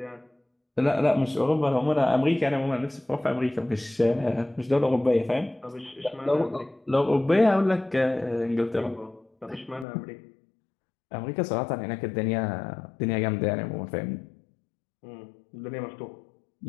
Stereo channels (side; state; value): right; drops out; at 9.9 s